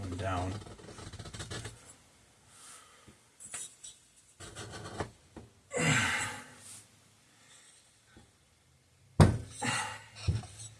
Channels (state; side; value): identical; both; correlation 1.00